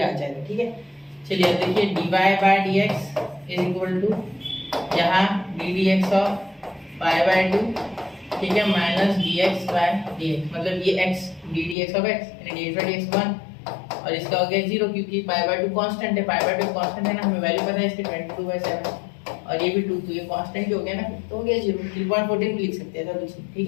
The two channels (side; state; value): right; drops out; at 11.8 s